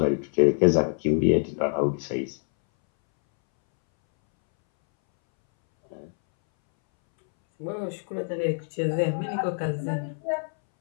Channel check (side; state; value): right; silent; 61 dB below the other